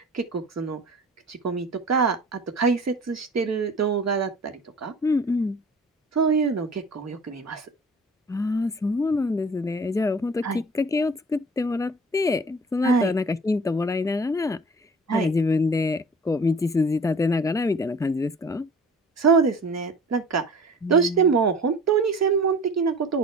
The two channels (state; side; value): normal; both; correlation 0.44